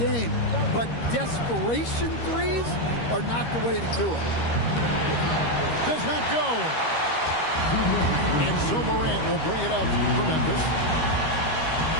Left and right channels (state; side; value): late; right; 13 ms